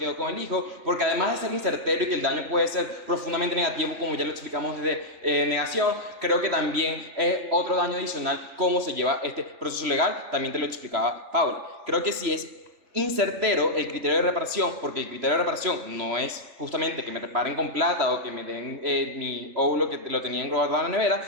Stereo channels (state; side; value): late; left; 3.4 ms